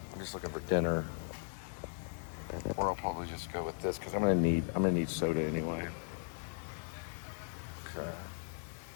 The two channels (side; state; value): right; silent; 53 dB below the other